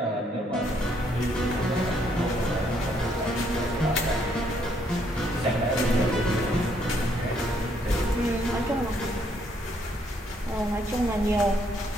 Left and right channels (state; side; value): normal; both; correlation 0.70